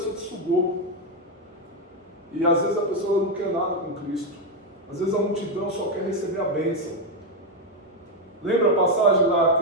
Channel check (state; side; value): normal; both; correlation 0.05